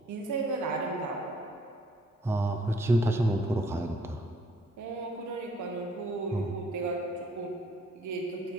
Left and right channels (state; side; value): normal; both; correlation 0.62